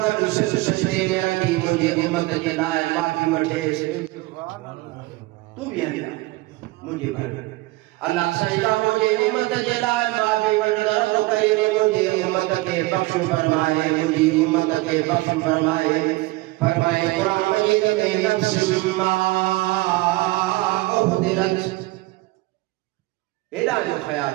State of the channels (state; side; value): quieter; left; 20.6 dB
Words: गॾु सिर सजदे में रखी मुंहिंजे उम्मत जे लाइ माफ़ी वठेसि तूं बि हली मुंहिंजे घर अल्लाह साईं का मुंहिंजे उम्मत जे लाइ माफ़ी वठंदड़ तो कई मुंहिंजे उम्मत खे बख़्श फरमाए मुंहिंजी उम्मत खे बख़्श फरमाए क़ुरान मजीद में नफ्स मा उहदिरत हेॾा जो ख़्याल